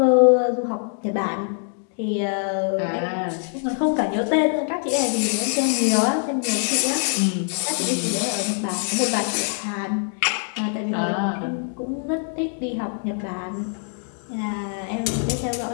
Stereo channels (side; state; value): right; silent; 56 dB below the other